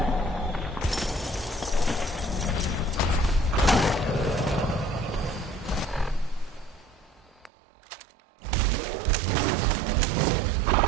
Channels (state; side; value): drops out; left; at 7.5 s